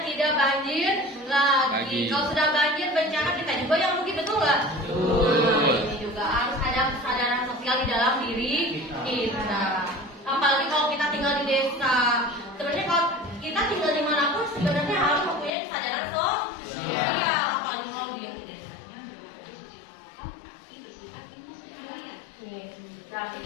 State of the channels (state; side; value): drops out; right; at 15.5 s